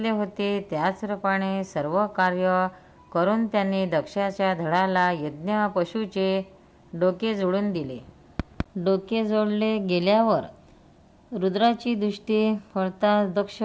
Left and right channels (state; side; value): identical; both; correlation 1.00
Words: होते त्याचप्रमाणे सर्व कार्य करून त्यांनी दक्षाच्या धडाला यज्ञ पशुचे डोके जोडून दिले. डोके जोडले गेल्यावर रुद्राची दृष्टी पडताच दक्ष